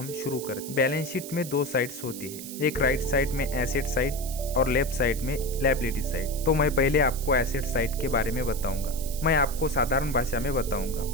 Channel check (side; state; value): right; noise; hiss, 11 dB below the sound